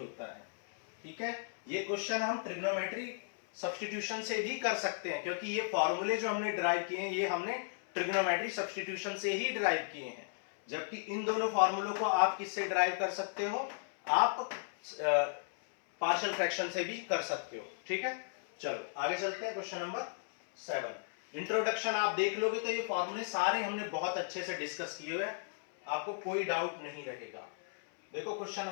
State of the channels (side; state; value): right; silent; 54 dB below the other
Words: है, ठीक है। ये क्वेश्चन हम ट्रिग्नोमेट्री सब्स्टिट्यूशन से भी कर सकते हैं, क्योंकि ये फॉर्मूले जो हमने ड्राइव किए हैं ये हमने ट्रिग्नोमेट्री सब्स्टिट्यूशन से ही ड्राइव किए हैं, जबकि इन दोनों फॉर्मूलों को आप किससे ड्राइव कर सकते हो, आप पार्शियल फ्रैक्शन से भी कर सकते हो, ठीक है। चलो आगे चलते हैं, क्वेश्चन नंबर 7। इंट्रोडक्शन आप देख लोगे तो ये फॉर्मूले सारे हमने बहुत अच्छे से डिस्कस किए हुए हैं, आपको कोई डाउट नहीं रहेगा। देखो क्वेश्चन